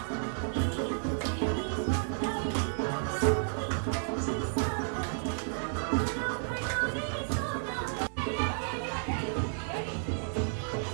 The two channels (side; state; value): left; silent; digital silence